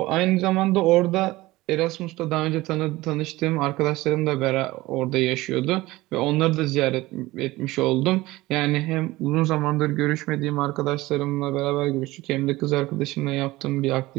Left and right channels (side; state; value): left; quieter; 19.1 dB